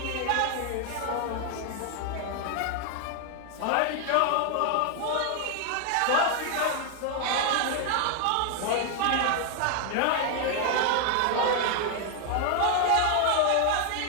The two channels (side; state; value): both; different; correlation 0.00